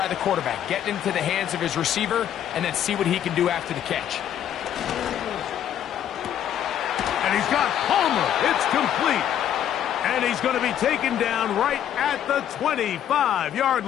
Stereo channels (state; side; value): quieter; right; 10.2 dB